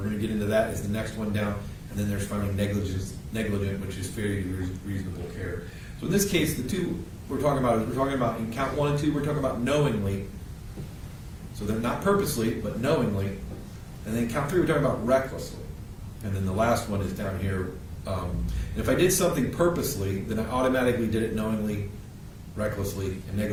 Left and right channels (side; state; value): both; identical; correlation 1.00